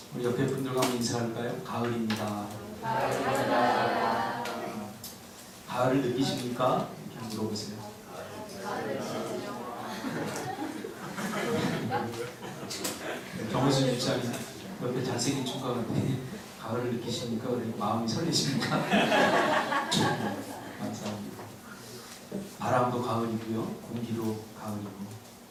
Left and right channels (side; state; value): both; identical; correlation 1.00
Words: 우리 옆에 분들과 한번 인사할까요? 가을입니다. 가을을 느끼십니까? 이렇게 물어보세요. 정우수 집사님 옆에 잘생긴 총각한테 가을을 느끼십니까? 그러니 마음이 설레십니까? 감사합니다. 바람도 가을이고요, 공기도 가을이고